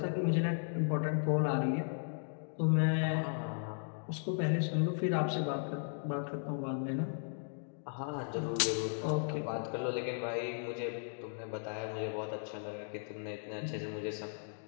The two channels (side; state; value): right; silent; digital silence